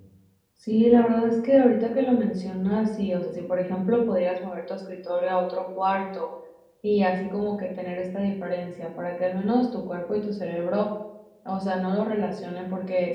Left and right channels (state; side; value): identical; both; correlation 1.00